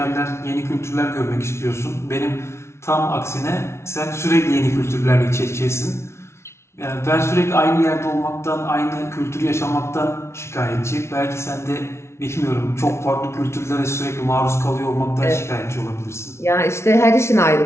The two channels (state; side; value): late; right; 0.13 ms